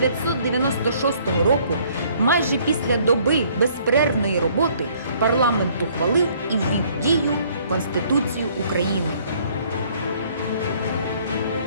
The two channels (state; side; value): inverted; both; correlation -0.61